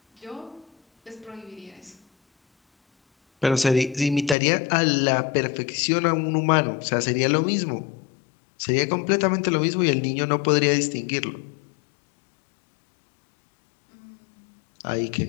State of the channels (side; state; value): right; drops out; at 4.4 s